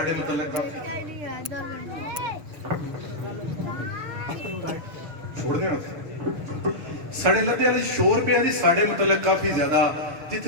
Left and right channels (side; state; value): left; late; 6.5 ms